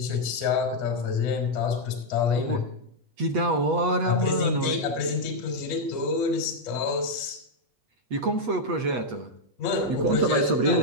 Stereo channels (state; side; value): late; left; 8.3 ms